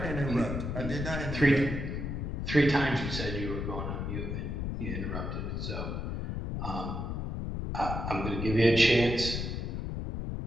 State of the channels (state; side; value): noise; left; rumble, 3 dB below the sound